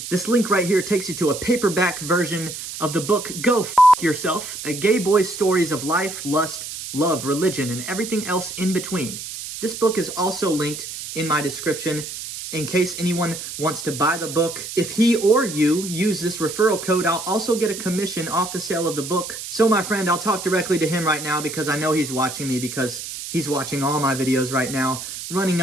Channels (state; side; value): noise; right; hiss, 9 dB below the sound